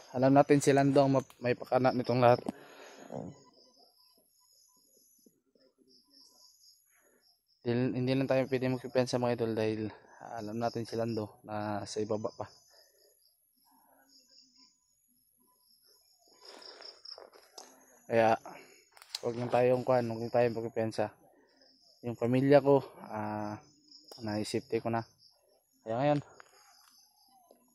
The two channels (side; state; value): both; identical; correlation 1.00